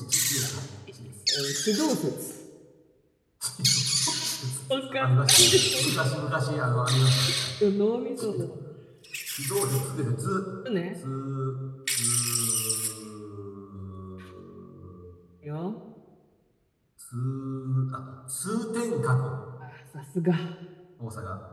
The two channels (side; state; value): both; identical; correlation 1.00